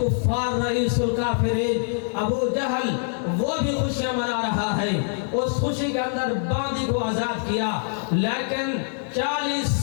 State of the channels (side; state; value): right; silent; 58 dB below the other